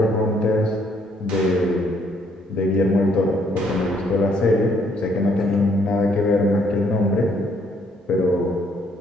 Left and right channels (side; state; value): both; normal; correlation 0.68